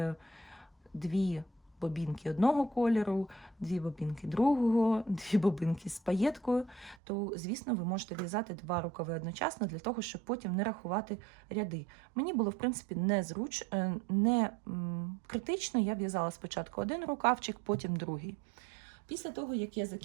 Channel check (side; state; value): left; drops out; at 7.0 s